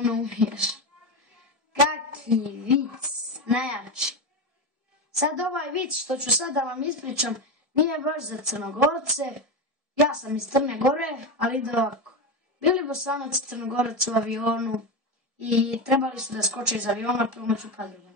umiješ. Kaki vic, najjači. Sad ovaj vic što ću sad da vam ispričam nije baš za Crnogorce. Ja sam iz Crne Gore, ali ide ovako. Bili Bosanac i Crnogorac u avionu i trebali su da skoče iz aviona pomoću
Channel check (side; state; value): left; late; 1.7 ms